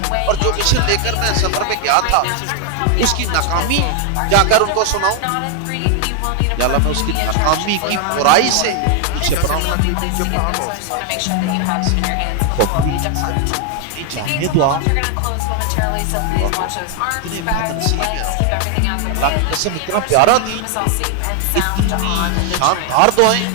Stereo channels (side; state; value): both; different; correlation 0.00